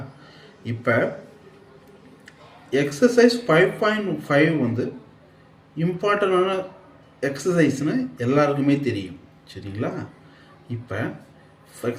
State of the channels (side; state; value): both; identical; correlation 1.00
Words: இப்போ எக்ஸசைஸ் 5.5 இம்பார்ட்டண்டான எக்ஸசைஸ்னு எல்லாருக்குமே தெரியும். சரிங்களா? இப்போ